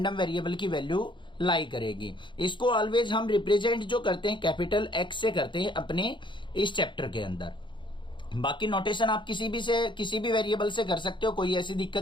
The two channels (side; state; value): right; late; 0.23 ms